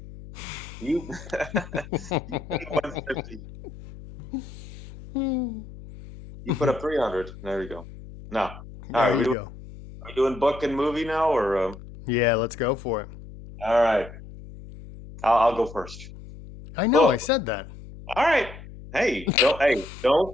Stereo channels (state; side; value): noise; left; hum, 15 dB below the sound